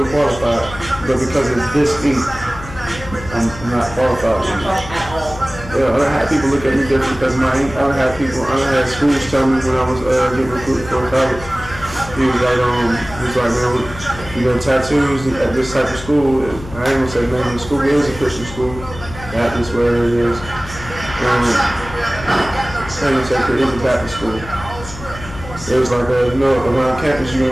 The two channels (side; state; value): left; noise; hum, 13 dB below the sound